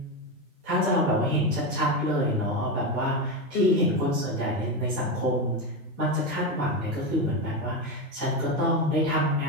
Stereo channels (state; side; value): normal; both; correlation 0.14